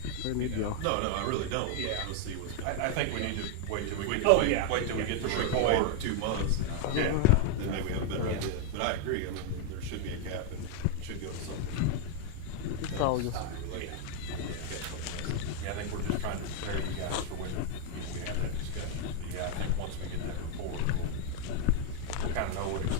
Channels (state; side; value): different; both; correlation 0.00